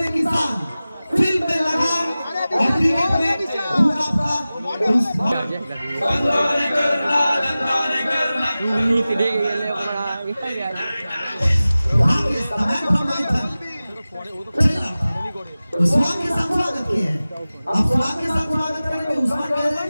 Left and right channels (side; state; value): both; inverted; correlation -0.96